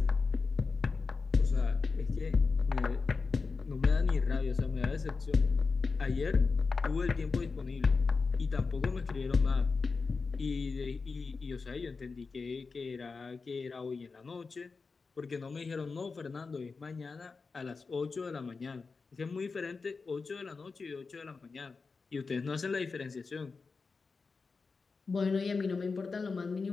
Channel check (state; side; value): quieter; right; 4.5 dB